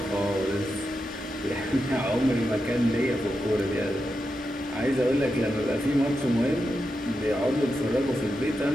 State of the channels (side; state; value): both; normal; correlation 0.88